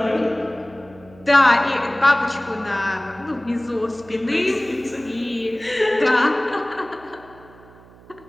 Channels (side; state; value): right; noise; hum, 24 dB below the sound